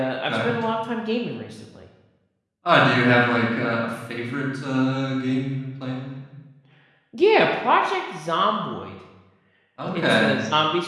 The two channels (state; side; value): identical; both; correlation 1.00